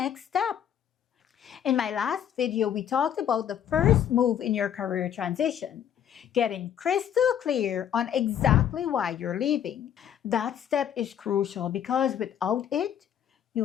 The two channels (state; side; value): quieter; right; 9.5 dB